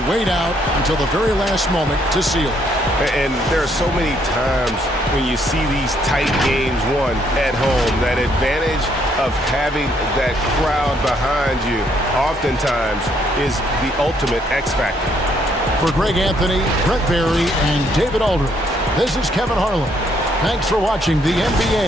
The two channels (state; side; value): normal; both; correlation 0.70